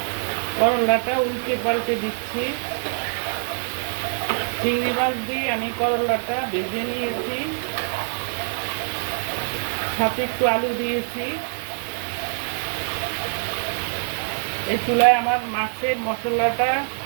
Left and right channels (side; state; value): left; silent; digital silence